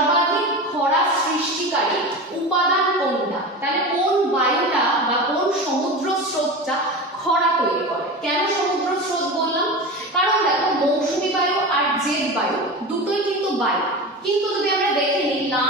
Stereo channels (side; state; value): both; normal; correlation 0.27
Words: খরা সৃষ্টিকারী উপাদান কোনটা? তাহলে কোন বায়ুটা বা কোন সমুদ্র স্রোতটা খরা তৈরি করে? কেন সমুদ্র স্রোত বললাম? কারণ দেখো মৌসুমী বায়ু আর জেট বায়ু দুটোই কিন্তু বায়ু, কিন্তু যদি আমরা দেখে নিই লা